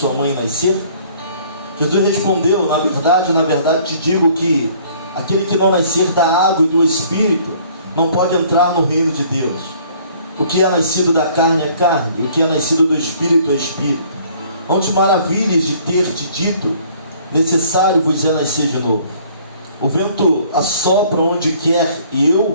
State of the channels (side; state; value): both; inverted; correlation -0.57